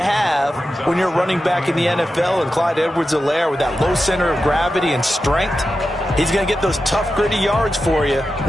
when you're running back in the NFL. And Clyde Edwards-Helaire, with that low center of gravity and strength, he's going to get those tough, gritty yards for you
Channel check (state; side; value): normal; both; correlation 0.91